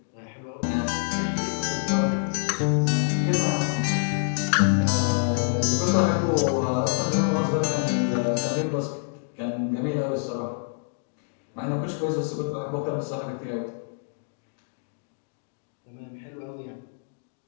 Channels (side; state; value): right; silent; digital silence